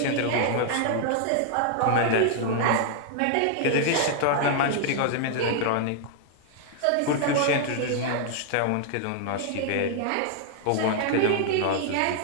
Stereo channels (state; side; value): different; both; correlation 0.00